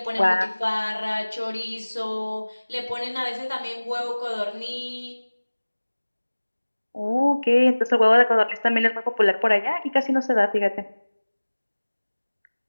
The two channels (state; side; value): inverted; both; correlation -1.00